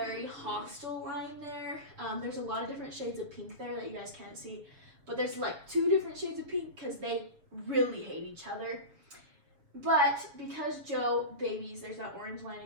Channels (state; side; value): late; left; 6.9 ms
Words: hostile line there. There's a lot of different shades of pink there that you guys can't see, but there's like 2 different shades of pink because they really hate each other. But because Joe babies, there's that orange line